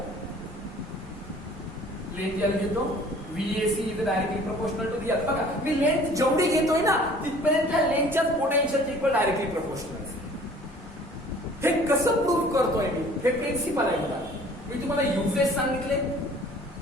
Length L घेतो, VAC is directly proportional to the L. बघा मी लेंथ जेवढी घेतोय ना तिथपर्यंत त्या लेंथच्याच पोटेन्शियल इक्वल डायरेक्टली प्रोपोर्शनल. हे कसं प्रूव्ह करतोय मी, हे प्रिन्सिपल आहे. मी तुम्हाला युजेस सांगितले,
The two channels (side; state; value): both; normal; correlation 0.51